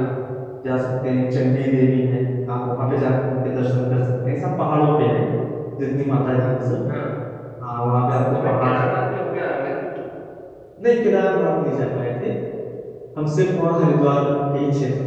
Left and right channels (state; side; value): identical; both; correlation 1.00